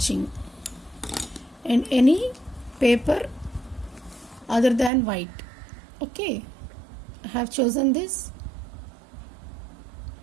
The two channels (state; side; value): drops out; left; at 4.9 s